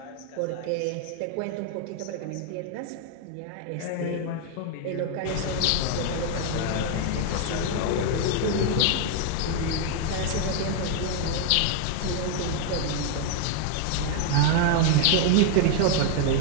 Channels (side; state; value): both; different; correlation 0.00